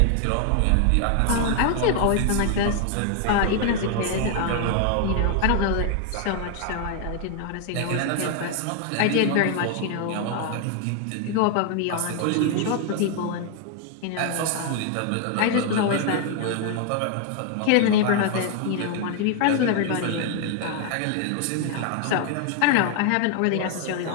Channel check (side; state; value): both; different; correlation 0.00